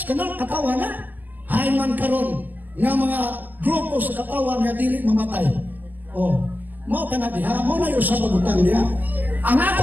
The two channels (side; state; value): left; late; 0.084 ms